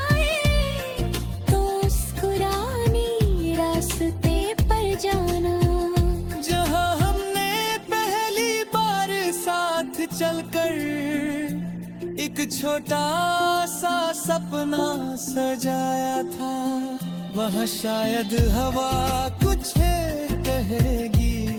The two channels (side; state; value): both; identical; correlation 1.00